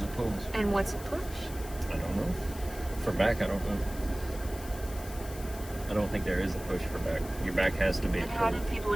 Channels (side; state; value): left; noise; hiss, 15 dB below the sound